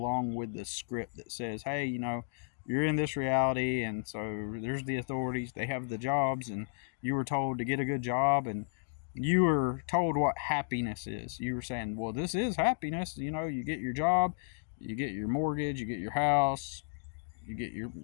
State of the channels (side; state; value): right; silent; digital silence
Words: with the script that says, hey, you're in this reality, and so there's the authorities, they have the jobs, and you were told to get a good job, and you were told what happiness is. You were saying, well, this is happiness. You get your job, you get your mortgage, you get your house, you get your